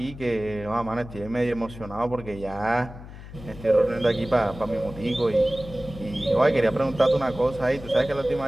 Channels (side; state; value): left; noise; hum, 15 dB below the sound